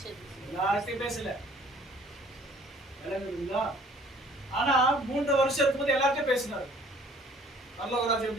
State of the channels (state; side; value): normal; both; correlation 0.55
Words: யார்கிட்ட பேசல. ஆனா 3 வருஷம் இருக்கும்போது எல்லார்ட்டும் பேசினாரு. பரலோக ராஜ்யம்